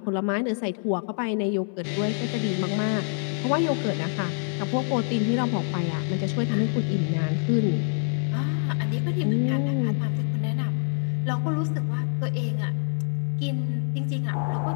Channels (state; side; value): silent; right; 57 dB below the other